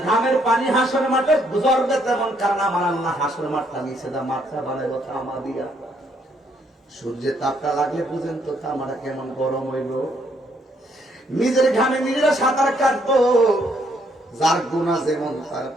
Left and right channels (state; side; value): normal; both; correlation 0.70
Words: ঘামের পানি হাসর মাঠে গুজরবে তেমন, কারণ আমার আল্লাহ হাসর মাঠটা নিচে দা মাথা বানাইব তামা দিয়া। সূর্যের তাপটা লাগলে বুঝেন তো তামাটা কেমন গরম হইল। নিজের ঘামে নিজেরা সাঁতার কাটবো, যার গুনাহ যেমন তার